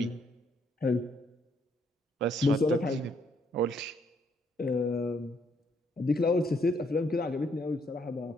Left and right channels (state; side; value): normal; both; correlation 0.71